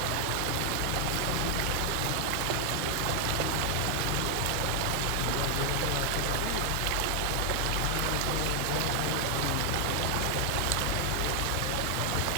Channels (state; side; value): different; both; correlation 0.00